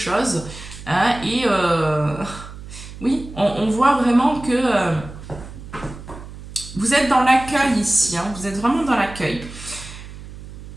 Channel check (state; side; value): noise; right; hum, 14 dB below the sound